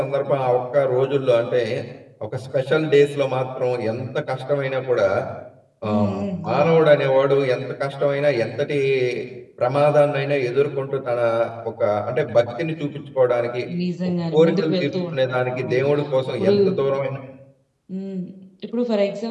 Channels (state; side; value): identical; both; correlation 1.00